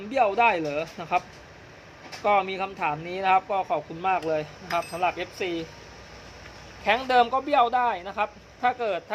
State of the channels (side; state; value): both; identical; correlation 1.00